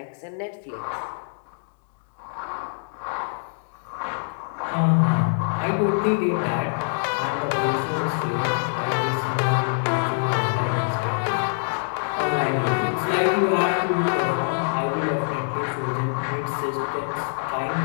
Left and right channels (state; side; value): silent; right; digital silence